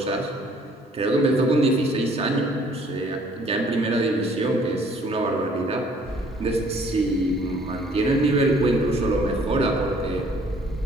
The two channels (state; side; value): normal; both; correlation 0.59